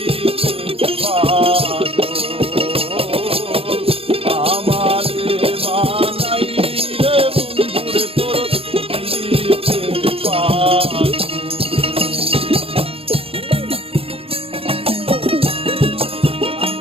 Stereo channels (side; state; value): left; late; 0.28 ms